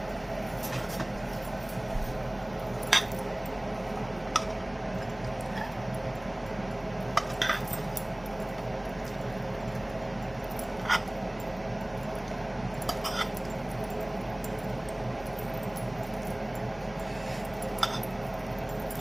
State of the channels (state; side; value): noise; left; hum, 21 dB below the sound